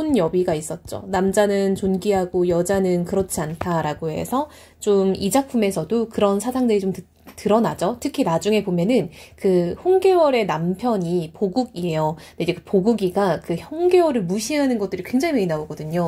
있었죠. 남자는 존귀하고 여자는 그렇지 않다라고 해서 좀 이 작품에서도 그런 사상들이 좀 드러나죠. 특히 나중에 보면은 그 홍계월의 남편이 보국이에요. 근데 이제 그 보국이가 그 홍계월을 무시하는 것들이 굉장히 많이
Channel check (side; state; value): both; identical; correlation 1.00